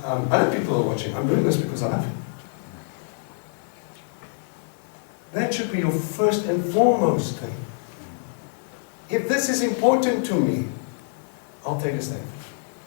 other people are watching. I'm doing this because I love you. That should be your first and foremost thing. If this is important to me, I'll take a stand.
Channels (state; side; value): silent; right; 55 dB below the other